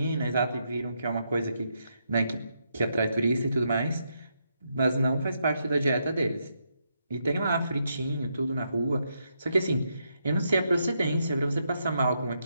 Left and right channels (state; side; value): inverted; both; correlation -0.80